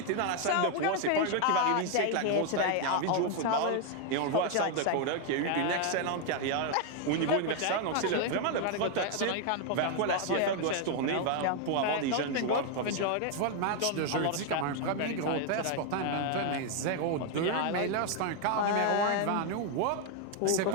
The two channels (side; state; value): both; different; correlation 0.01